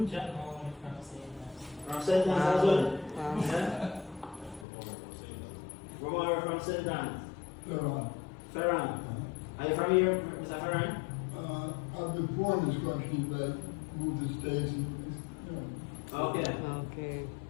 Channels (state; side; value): drops out; right; at 4.7 s